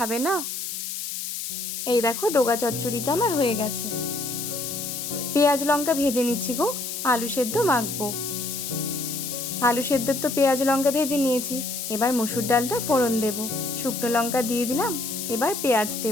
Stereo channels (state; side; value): noise; left; hiss, 5 dB below the sound